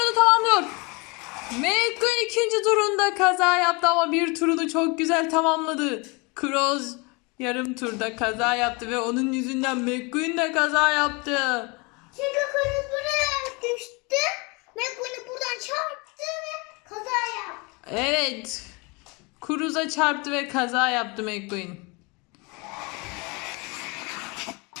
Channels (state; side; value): quieter; right; 28.5 dB